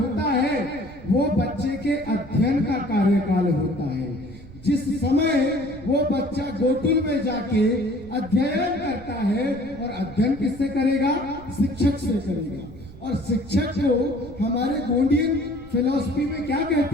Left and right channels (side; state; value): right; noise; rumble, 18 dB below the sound